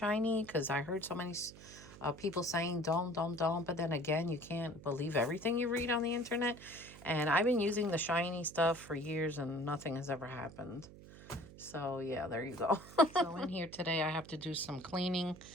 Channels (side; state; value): right; noise; hum, 18 dB below the sound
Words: because I heard so many people saying don't. But then again, you can't believe everything you read on the internet. And I've been using the shiny stuff for years and nothing has ever happened. So yeah, there you go. So in here today, I have to do some cleaning,